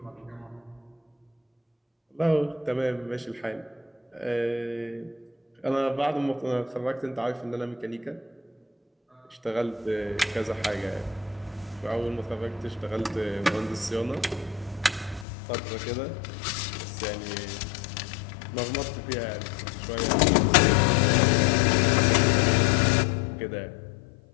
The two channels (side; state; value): right; drops out; at 15.2 s